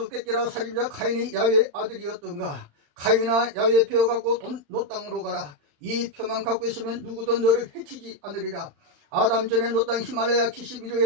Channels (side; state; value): left; late; 35 ms